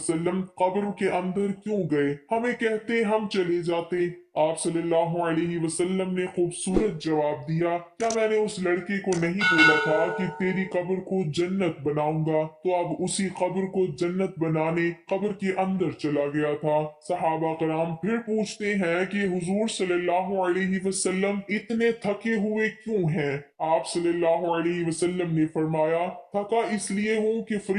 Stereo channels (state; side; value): identical; both; correlation 1.00